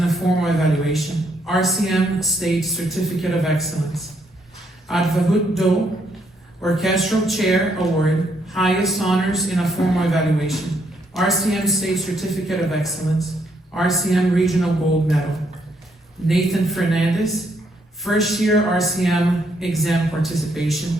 a formal evaluation, RCM State Certificate of Excellence. Advahut Do, Orchestral Chair Award, highest honors in a formal evaluation, RCM State Certificate of Excellence, RCM Regional Gold Medal. Nathan Fernandez, first year RCM exam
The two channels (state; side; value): normal; both; correlation 0.73